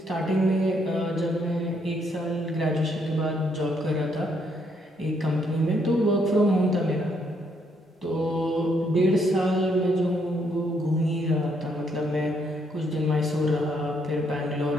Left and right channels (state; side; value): normal; both; correlation 0.72